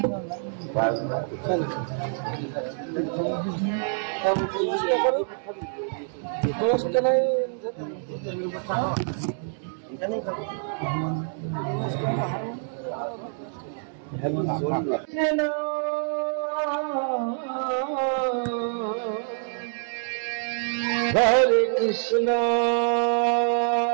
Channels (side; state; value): left; silent; digital silence